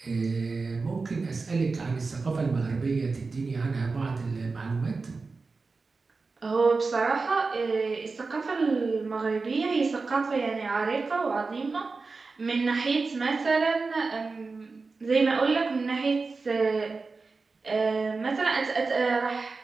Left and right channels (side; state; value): left; quieter; 4.1 dB